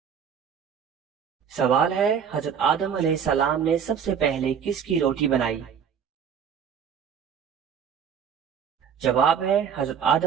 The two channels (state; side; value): quieter; left; 7.5 dB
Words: سوال ہے حضرت آدم علیہ السلام نے سب سے پہلے کس کی روٹی بنائی؟ جواب ہے حضرت